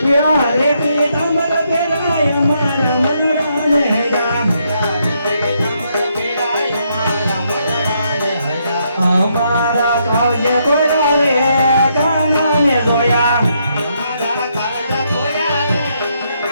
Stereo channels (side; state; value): both; inverted; correlation -0.76